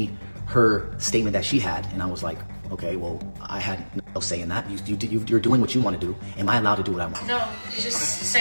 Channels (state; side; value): inverted; both; correlation -1.00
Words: her statement that she had, and I was like, Okay, well, I had no say in that. You're doing what you want to do. Am I allowed to do what I want? No, you just